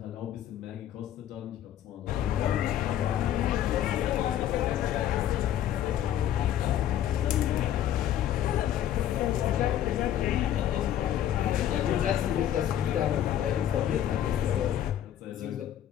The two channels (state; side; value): quieter; right; 11.0 dB